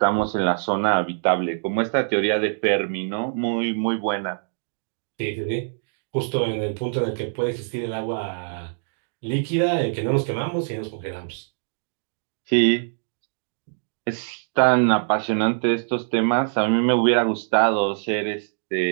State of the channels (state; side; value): silent; left; digital silence